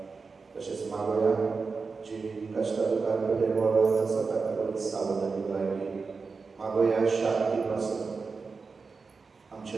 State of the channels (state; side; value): quieter; left; 4.6 dB